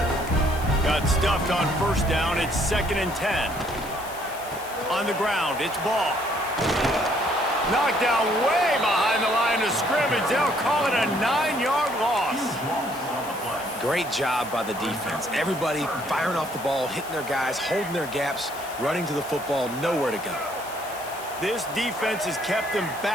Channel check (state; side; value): noise; left; hiss, 16 dB below the sound